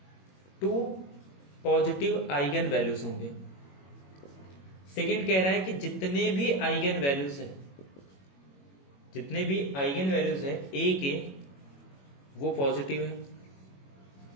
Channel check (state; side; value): late; right; 21 ms